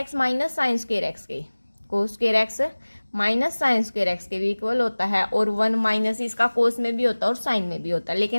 minus sign square x के। cos square x minus sign square x के भी इक्वल होता है, और 1 माइनस इसका कोस में भी होता है और साइन में भी होता है,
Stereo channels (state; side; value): inverted; both; correlation -1.00